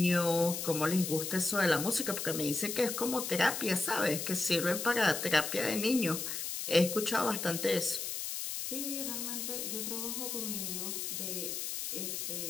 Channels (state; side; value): noise; left; hiss, 4 dB below the sound